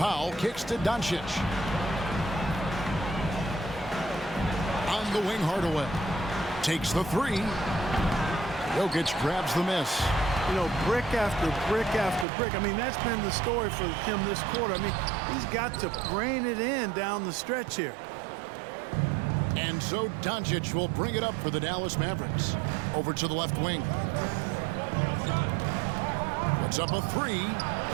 kicks to Doncic. On the wing, Hardaway. Takes the 3. Jokic grabs the miss. You know, brick after brick after brick. I mean, that's been the story for him this quarter. I mean, he's got to brain it in down the stretch here. And so Doncic will bring it up for the Dallas Mavericks. Over to the left wing. Puts up a 3.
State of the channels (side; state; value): left; drops out; at 12.2 s